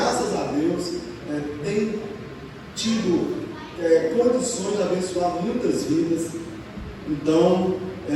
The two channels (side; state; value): both; identical; correlation 1.00